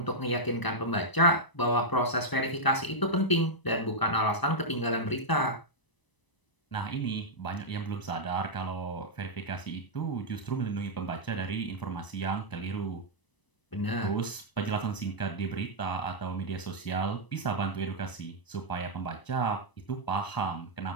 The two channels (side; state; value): right; late; 1.0 ms